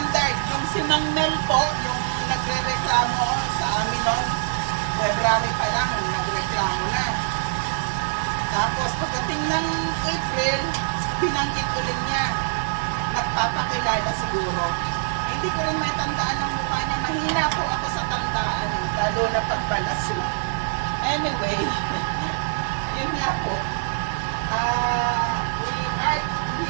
Yung si Mang Mel po, yung nagre-reklamo sa amin noon, February pa lang, nagreklamo na. Tapos pagdating ng April, binanggit ulit niya. Nagpapakilala siguro. Hindi ko rin may tandaan ng mukha niya mahina po ako sa tandaan, lalo na pagpalaso. Anyway, yun nga po. We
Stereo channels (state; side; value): silent; left; digital silence